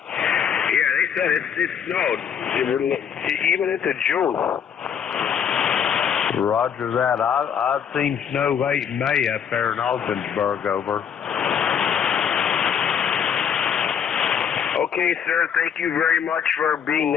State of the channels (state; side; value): quieter; right; 7.9 dB